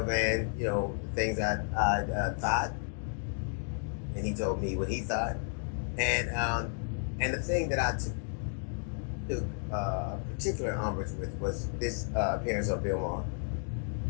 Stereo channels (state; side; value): silent; right; 56 dB below the other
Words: Van, the things I thought, and he told me what he thought, and the thing that I took particular umbrage with was this appearance of Bill Maher.